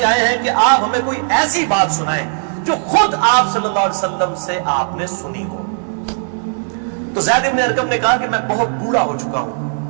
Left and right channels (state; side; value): silent; left; 68 dB below the other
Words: آئے ہیں کہ آپ ہمیں کوئی ایسی بات سنائیں جو خود آپ صلی اللہ علیہ وسلم سے آپ نے سنی ہو. تو زید بن ارقم نے کہا کہ میں بہت بوڑھا ہو چکا ہوں,